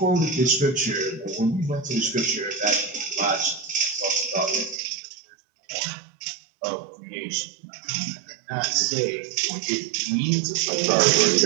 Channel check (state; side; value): drops out; left; at 4.8 s